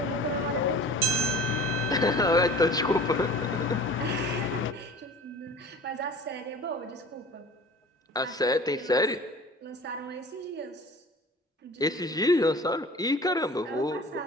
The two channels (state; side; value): normal; both; correlation 0.42